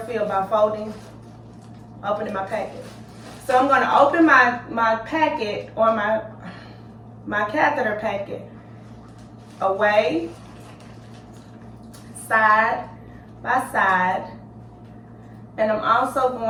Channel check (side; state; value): both; identical; correlation 1.00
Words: field by opening my packet. So I'm going to open my packet, or my catheter packet, away, side by side, and I'm also